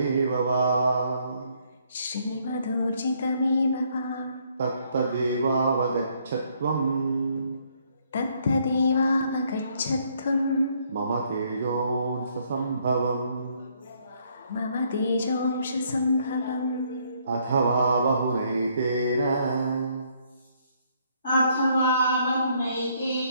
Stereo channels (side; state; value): both; inverted; correlation -0.69